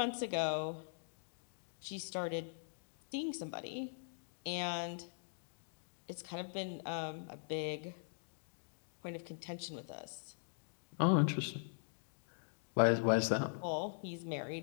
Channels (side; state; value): right; silent; digital silence